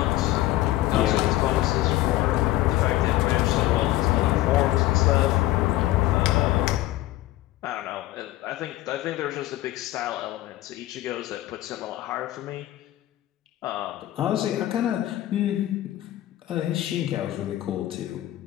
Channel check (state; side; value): quieter; right; 15.9 dB